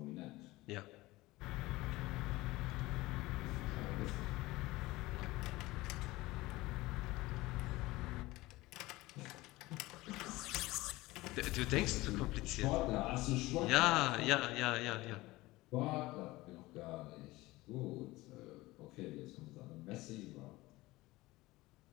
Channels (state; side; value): quieter; right; 19.6 dB